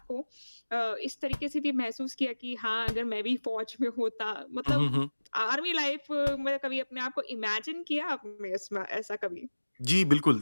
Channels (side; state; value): both; inverted; correlation -1.00